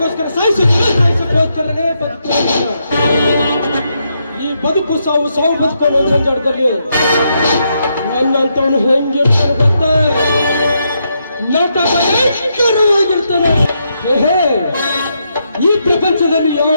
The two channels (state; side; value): inverted; both; correlation -0.80